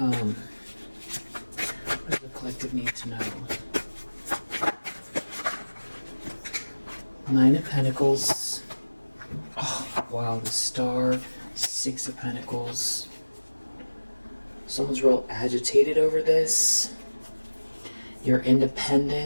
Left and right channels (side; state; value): both; inverted; correlation -1.00